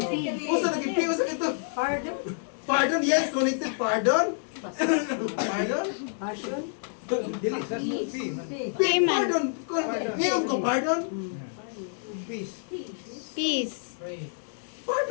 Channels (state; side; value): silent; right; digital silence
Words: Usa naging piyo sa ito. Pardon? Pardon, yes, connected pardon. Pardon? Passion? Dili sa P. Payment. Pardon. Ngayon ko pardon. Peace. Peace. Pray.